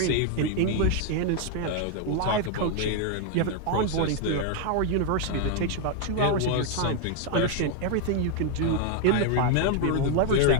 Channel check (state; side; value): different; both; correlation 0.00